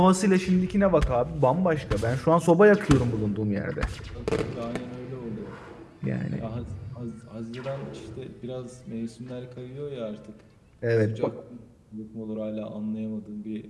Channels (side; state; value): both; identical; correlation 1.00